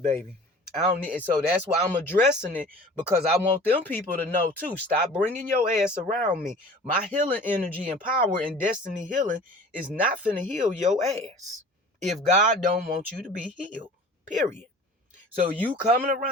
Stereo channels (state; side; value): normal; both; correlation 0.44